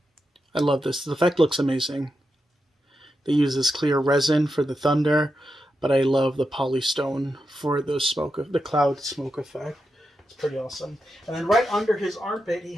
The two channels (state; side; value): normal; both; correlation 0.87